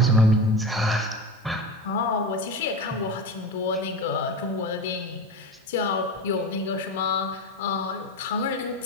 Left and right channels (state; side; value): normal; both; correlation 0.24